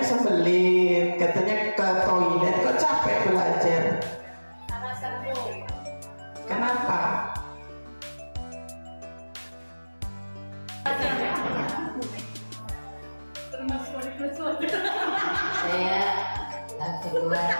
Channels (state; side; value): inverted; both; correlation -1.00